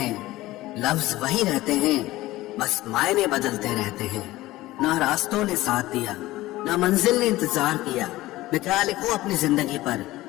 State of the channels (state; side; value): quieter; right; 17.5 dB